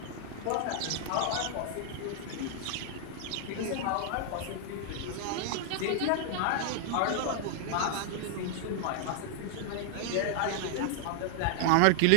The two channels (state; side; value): different; both; correlation 0.00